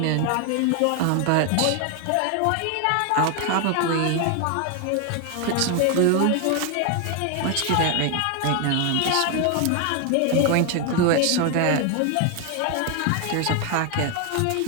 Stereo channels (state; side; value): different; both; correlation 0.01